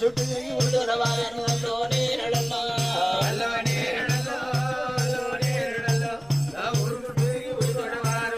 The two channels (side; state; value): left; noise; rumble, 23 dB below the sound